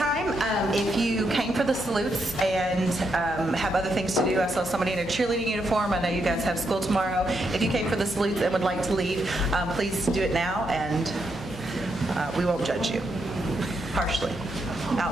if you came for the salutes and have other things to do, I saw somebody in a cheerleading uniform. I know you guys have school tomorrow. If you came for the salutes and would like to leave, please do it now, and we won't judge you harshly,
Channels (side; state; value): both; normal; correlation 0.80